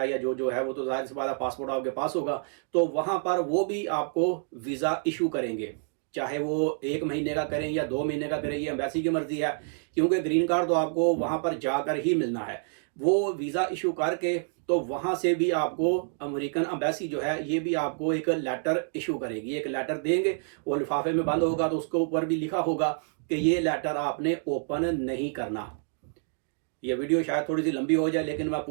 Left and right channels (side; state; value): left; silent; 59 dB below the other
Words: या जो है वो तो जाहिर सी बात है पासपोर्ट आपके पास होगा। तो वहाँ पर वो भी आपको वीज़ा इशू करेंगे, चाहे वो 1 महीने का करें या 2 महीने का करें, ये एम्बेसी की मर्जी है, क्योंकि ग्रीन कार्ड तो आपको वहाँ पर जाकर ही मिलना है। वो वीज़ा इशू करके तो वहाँ से भी आपको अमेरिकन एम्बेसी जो है ये भी आपको एक लेटर इशू करेगी, एक लेटर देंगे, वो लिफाफे में बंद होगा, तो उसके ऊपर भी लिखा होगा कि ये लेटर आपने ओपन नहीं करना। ये वीडियो शायद थोड़ी सी लंबी हो जाए, लेकिन मैं